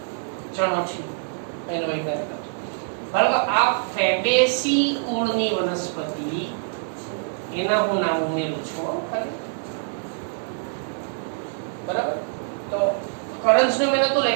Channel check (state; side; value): silent; left; 59 dB below the other